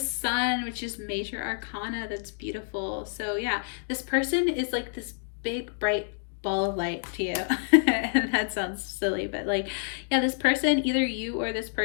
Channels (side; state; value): right; silent; digital silence